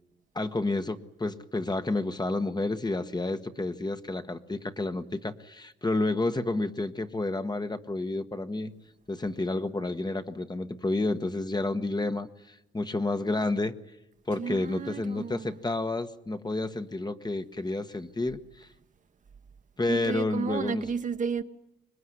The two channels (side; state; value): both; normal; correlation 0.82